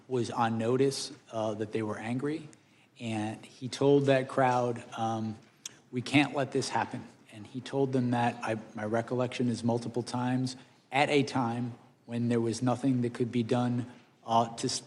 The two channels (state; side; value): identical; both; correlation 1.00